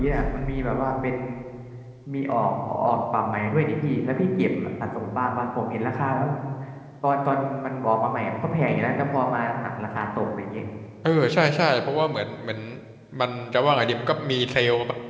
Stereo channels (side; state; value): both; identical; correlation 1.00